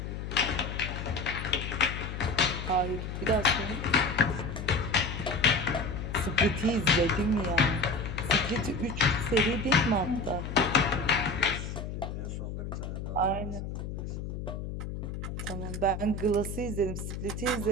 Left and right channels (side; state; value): left; noise; hum, 6 dB below the sound